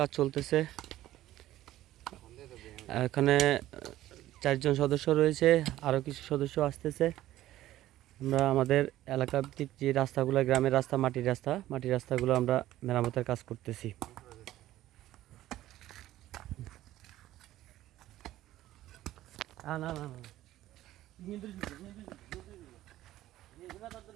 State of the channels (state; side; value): quieter; left; 14.5 dB